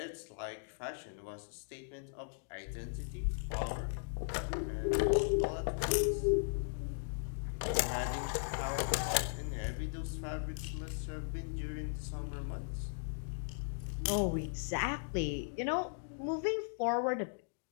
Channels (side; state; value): right; silent; digital silence